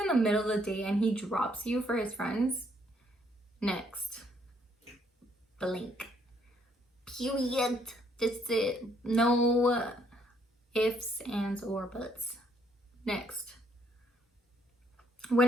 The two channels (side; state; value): both; normal; correlation 0.69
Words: in the middle of the day and he drops you for his friends, next. Blink. Period. That's it. No ifs, ands, or buts. Next.